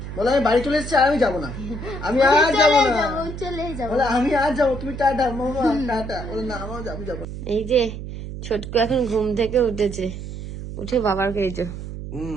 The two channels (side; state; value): right; noise; hum, 9 dB below the sound